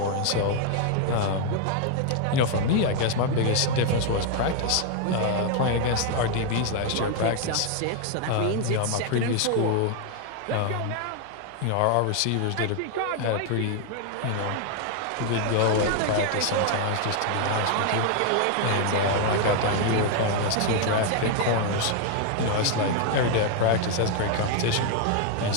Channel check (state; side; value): different; both; correlation 0.00